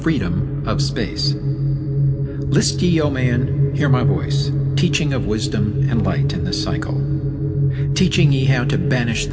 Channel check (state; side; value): identical; both; correlation 1.00